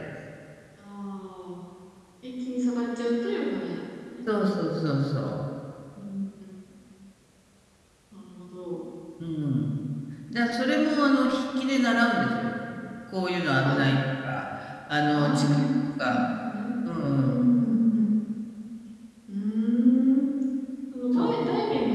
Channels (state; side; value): identical; both; correlation 1.00